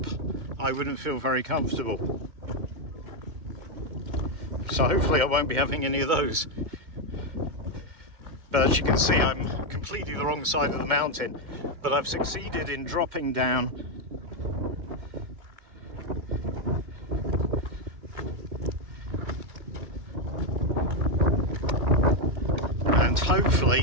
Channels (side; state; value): left; late; 2.1 ms